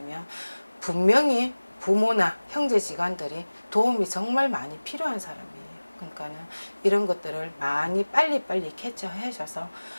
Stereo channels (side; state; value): both; inverted; correlation -1.00